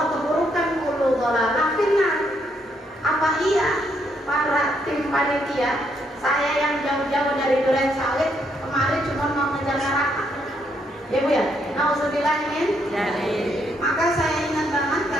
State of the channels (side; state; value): both; normal; correlation 0.74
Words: keburukan, kullu dolalah finnar. Apa iya para tim panitia, saya yang jauh-jauh dari Duren Sawit kemarin cuma mau ngejar neraka ya Bu ya, nauzubillah min. Maka saya ingat banget